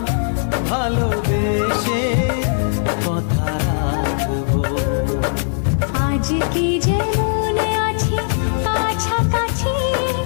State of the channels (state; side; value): silent; right; digital silence